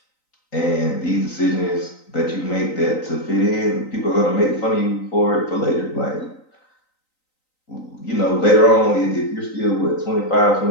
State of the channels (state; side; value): late; right; 3.9 ms